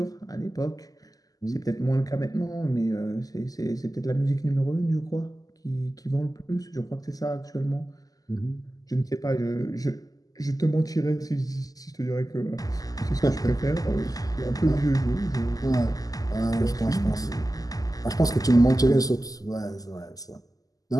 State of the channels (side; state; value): right; late; 0.17 ms